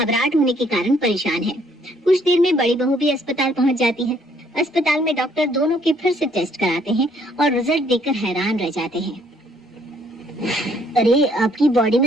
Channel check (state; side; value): normal; both; correlation 0.65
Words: होने के कारण परेशान है। कुछ देर में बड़ी बहू भी अस्पताल पहुंच जाती है। अस्पताल में डॉक्टर दोनों के फिर से टेस्ट कराते हैं और रिजल्ट देखकर हैरान रह जाते हैं। अरे, आपकी बॉडी